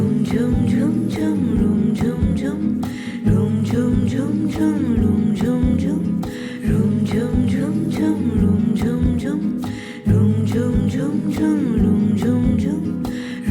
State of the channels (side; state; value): both; identical; correlation 1.00